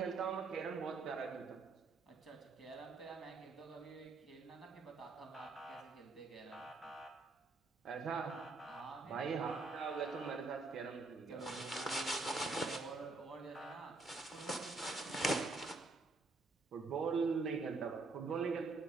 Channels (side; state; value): left; quieter; 3.6 dB